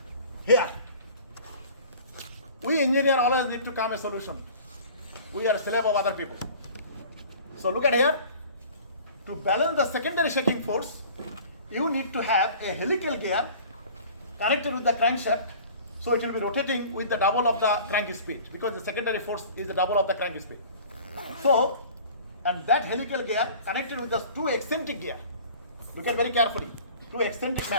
Here, we engineer always need to come a solution. We are slave of other people. So look at here. To balance the secondary shaking force, you need to have a helical gear connected with the crankshaft, so it will be rotating with the double of the crank speed, because the secondary force is the double of the crank speed. So, and that helical gear connected with the 2 eccentric gear. Look at very carefully. 2 eccentric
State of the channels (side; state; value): both; inverted; correlation -0.44